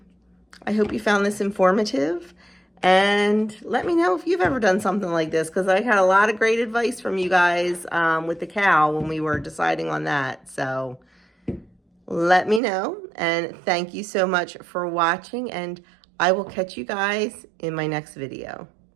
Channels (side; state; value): left; drops out; at 12.6 s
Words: hope you found this informative. And let me know if you've ever done something like this, because I had a lot of great advice from you guys with the cow when we were deciding on that. So let me know. And thank you so much for watching. And I will catch you guys in my next video.